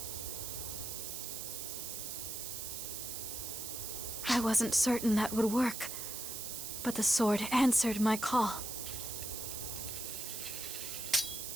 I wasn't certain that would work, but the sword answered my call.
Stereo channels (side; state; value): right; noise; hiss, 5 dB below the sound